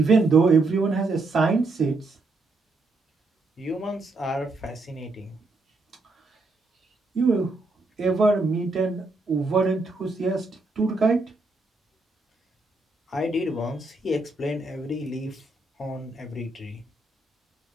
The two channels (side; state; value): left; quieter; 3.2 dB